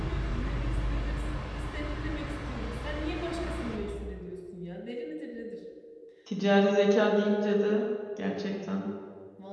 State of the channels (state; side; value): identical; both; correlation 1.00